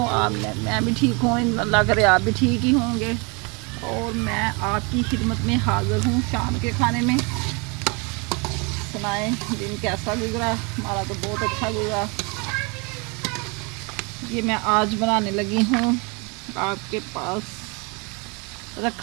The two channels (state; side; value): quieter; left; 30.7 dB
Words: आप? मैं भी ठीक हूँ, अल्लाह करे आप भी ठीक ही होंगे। और मैं आपकी खिदमत में हाज़िर हूँ शाम के खाने में। सुनाएं दिन कैसा गुजरा? हमारा तो बहुत अच्छा गुजरा। ये मैं आज बनाने लगी हूँ, आपके पास